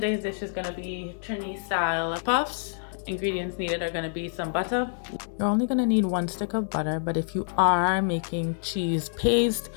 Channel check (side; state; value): right; silent; digital silence